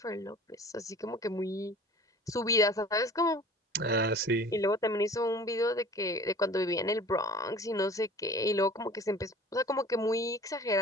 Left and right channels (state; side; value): normal; both; correlation 0.45